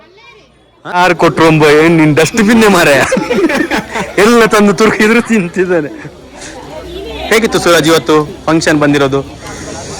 ಯಾರು ಕೊಟ್ರು ಏನ್ ನಿನ್ ಡಸ್ಟ್ಬಿನ್ನೇ ಮಾರೆ ಎಲ್ಲ ತಂದು ತುರುಕಿದ್ರು ತಿಂತಿದ್ದಾನೆ. ಹೇಗಿತ್ತು ಸೂರಜ್ ಇವತ್ತು ಫಂಕ್ಷನ್ ಬಂದಿರೋದು?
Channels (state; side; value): identical; both; correlation 1.00